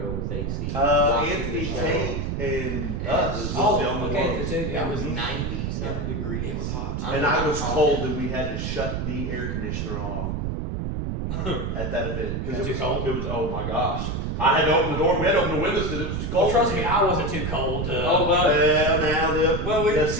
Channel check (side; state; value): right; noise; rumble, 2 dB below the sound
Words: with AC. watching Anthony the show. Tate and Yeah, us it was was- the only okay, ones. too. Yeah, It was Mhm. 90 some degrees. It was hot. And I was cold and we had to shut the air conditioner off at that event. That's it too was, cold? it was, oh my gosh. I had to open the door, we had to open the windows because it was too Well, cold. trust me, I wasn't too cold. Oh, well. Well, now the